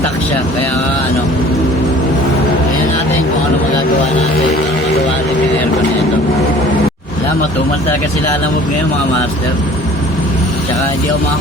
siya kaya kaya natin kung ano magagawa natin. Magawa natin yung aircon nito. Alam, matumal talaga sila alamog ngayon mga master. Tsaka hindi ako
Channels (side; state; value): both; normal; correlation 0.49